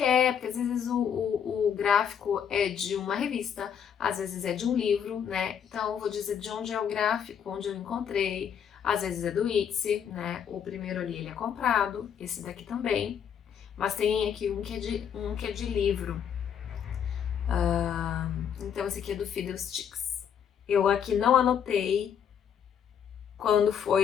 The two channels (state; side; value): quieter; right; 8.2 dB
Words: porque às vezes o gráfico é de uma revista, às vezes é de um livro, né? Então eu vou dizer de onde é o gráfico, onde eu encontrei, às vezes é do Etsy, né? O primeiro ali ele é comprado, esse daqui também. Mas tem aqui um que é de livro. Então esse aqui é do Fiddlesticks. Eu aqui não anotei